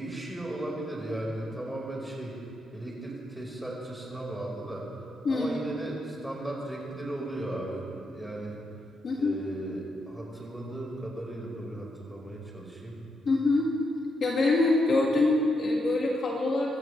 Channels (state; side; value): normal; both; correlation 0.81